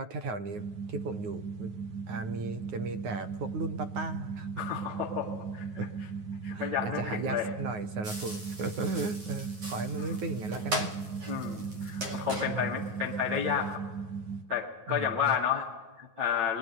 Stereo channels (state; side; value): late; left; 9.4 ms